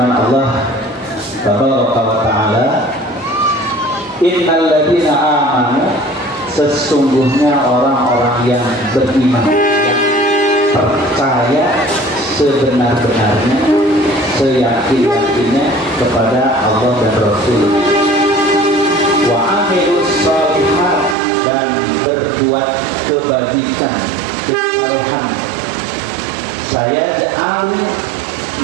Allah Tabaraka wa Ta'ala, innal ladzina amanu, sesungguhnya orang-orang yang beriman, yang percaya sebenar-benarnya, seyakin-yakinnya kepada Allah dan Rasul. Wa amilus shalihat, dan berbuat kebajikan, kesalehan. Saya ja'al,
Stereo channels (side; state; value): left; drops out; at 21.2 s